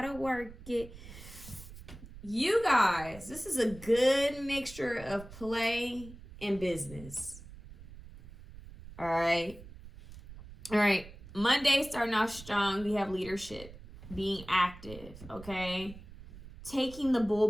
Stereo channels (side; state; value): right; noise; rumble, 16 dB below the sound